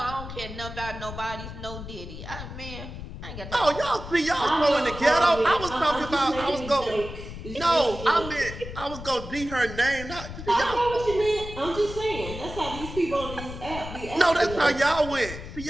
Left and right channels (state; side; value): noise; left; rumble, 10 dB below the sound